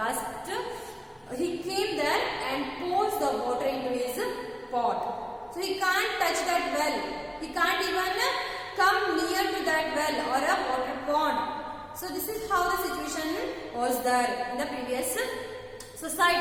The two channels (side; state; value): both; identical; correlation 1.00